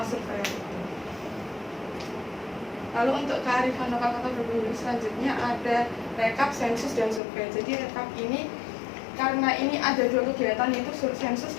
surveyor itu. Lalu untuk kearifan lokal Kota Probolinggo selanjutnya ada rekap, sensus, dan survei. Jadi rekap ini karena ini ada 2 kegiatan, yaitu sensus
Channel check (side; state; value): right; drops out; at 7.2 s